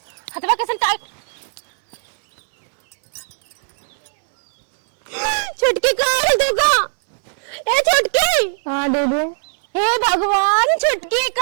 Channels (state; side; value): silent; left; digital silence